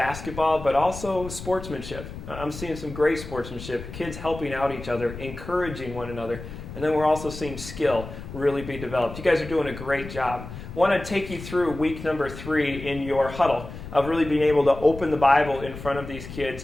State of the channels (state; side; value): noise; left; rumble, 11 dB below the sound